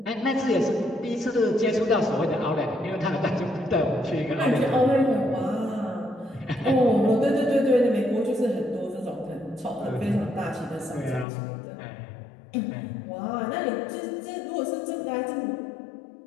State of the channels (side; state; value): right; drops out; at 11.2 s